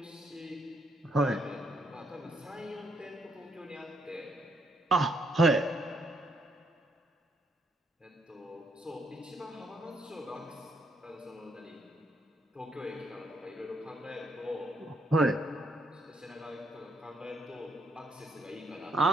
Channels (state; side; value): normal; both; correlation 0.73